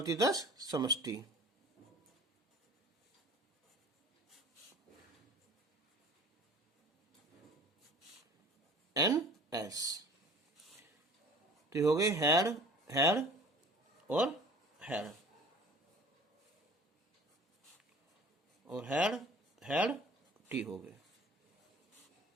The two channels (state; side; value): normal; both; correlation 0.45